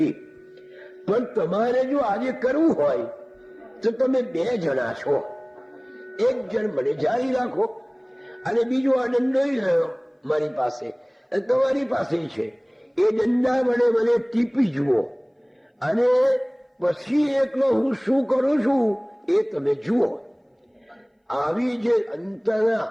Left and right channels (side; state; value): both; identical; correlation 1.00